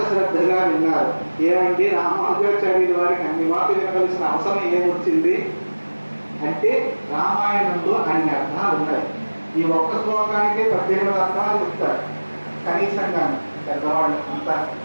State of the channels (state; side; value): inverted; both; correlation -1.00